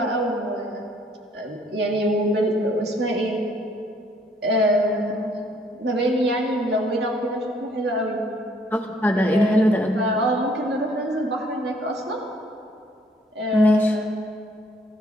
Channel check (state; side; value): normal; both; correlation 0.63